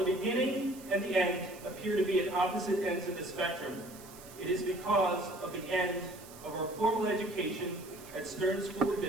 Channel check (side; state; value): right; noise; hiss, 19 dB below the sound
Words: beginning and the end appear to be at opposite ends of the spectrum, it is because of the end of our formal education at Stern School of